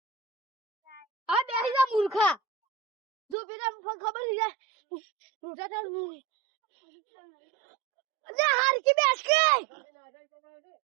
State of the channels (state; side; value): drops out; left; at 3.4 s